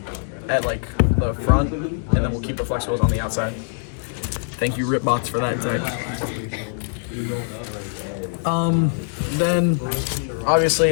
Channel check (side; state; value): right; silent; digital silence